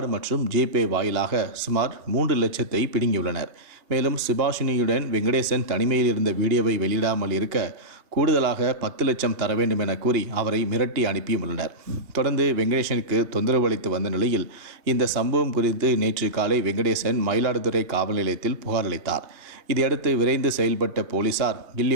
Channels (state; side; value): late; left; 3.1 ms